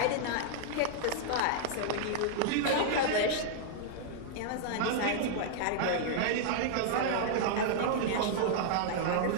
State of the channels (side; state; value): both; different; correlation -0.01